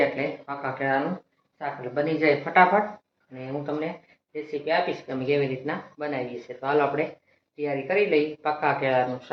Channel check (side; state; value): both; identical; correlation 1.00